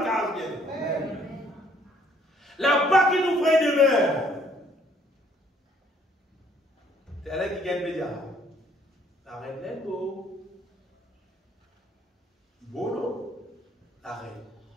case bien. Là-bas qui nous ferait demeure. C'est là qui gagne média. La reine est beau. Beau non? La reine.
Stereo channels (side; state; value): both; normal; correlation 0.64